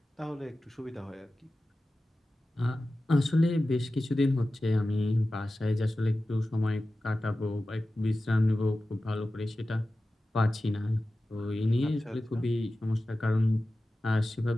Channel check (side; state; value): both; normal; correlation 0.94